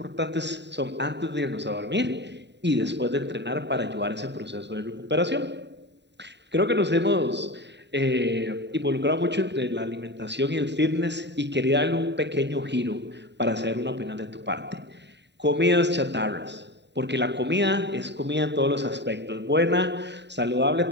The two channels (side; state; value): left; late; 0.51 ms